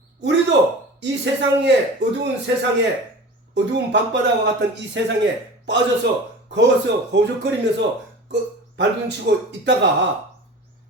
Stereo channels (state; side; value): normal; both; correlation 0.36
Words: 우리도 이 어두운 밤바다와 같은 이 세상에 빠져서 거기서 허우적거리면서 발둥치고 있다가